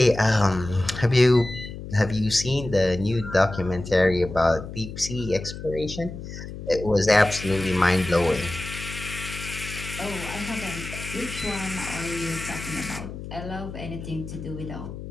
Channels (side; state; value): left; noise; hum, 10 dB below the sound